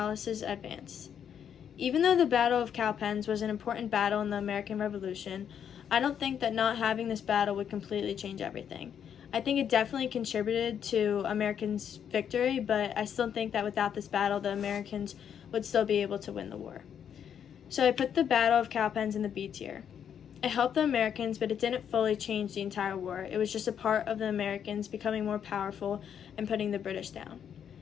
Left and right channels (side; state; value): right; quieter; 8.5 dB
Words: advance. Even though the Battle of Cowpens was an important battle in the American Revolution, I don't think that not having this battle would completely change everything. I think it definitely contributed to Americans' victory, but I still think that without this battle, the Americans would still be able to win the war. So I put the Battle of Cowpens in the B tier. It helped the Americans, but it didn't fully change the entire war. It was just a part of the Americans becoming more powerful and putting the British down.